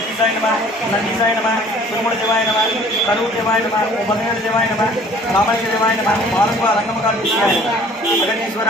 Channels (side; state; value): both; normal; correlation 0.53